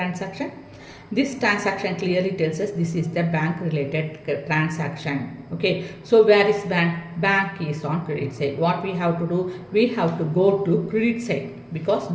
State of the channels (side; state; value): both; identical; correlation 1.00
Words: This transaction clearly tells us this is the bank related transaction. Okay, so where is bank? Bank is on credit side. What we have to do? We have to go to credit side because